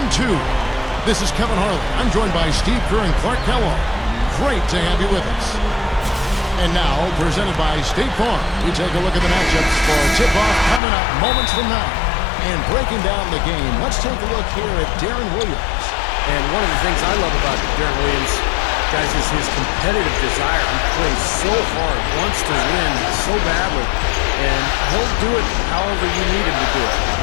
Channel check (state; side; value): drops out; right; at 10.8 s